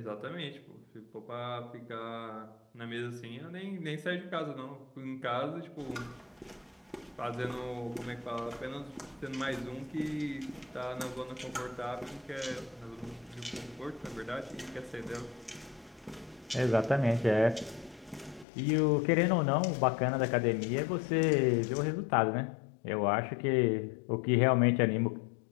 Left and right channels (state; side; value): drops out; right; at 18.4 s